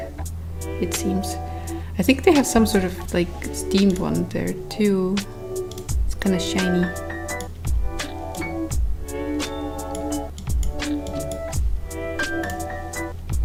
it seems. I think they have some sort of like steamed one there too. It's kind of shiny.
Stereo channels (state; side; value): identical; both; correlation 1.00